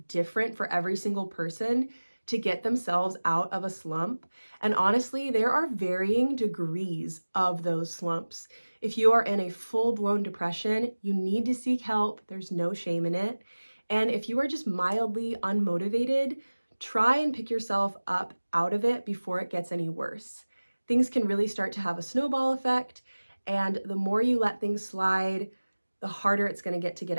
different for every single person to get themselves out of a slump. And honestly, there are varying degrees of those slumps. If you are in a full-blown depression, you need to seek help. There's no shame in it. And if you are just mildly unmotivated, try and pick yourself up out of it before it gets any worse. Things can really start to have a snowball effect, and the more you let things slide, the harder it's going to get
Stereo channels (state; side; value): inverted; both; correlation -1.00